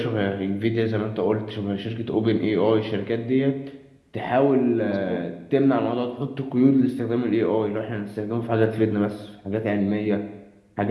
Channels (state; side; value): identical; both; correlation 1.00